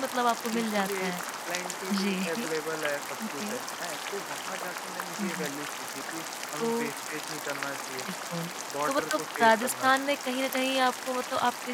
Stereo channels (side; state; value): both; identical; correlation 1.00